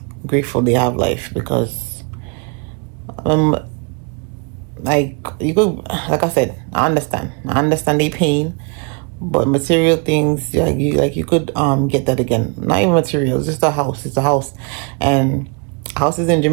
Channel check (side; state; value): left; quieter; 34.7 dB